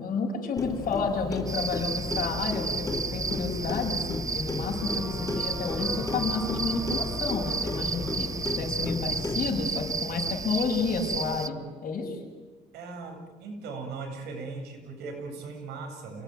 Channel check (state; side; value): normal; both; correlation 0.49